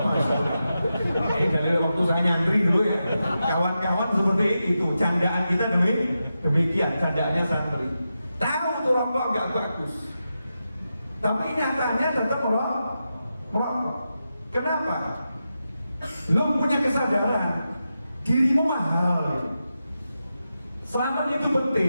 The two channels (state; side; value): inverted; both; correlation -0.89